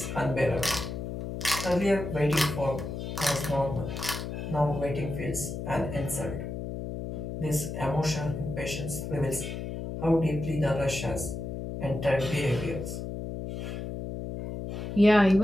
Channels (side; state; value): left; noise; hum, 6 dB below the sound